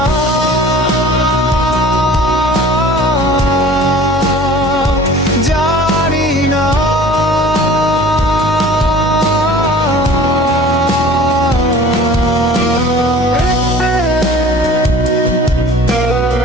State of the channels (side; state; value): both; normal; correlation 0.45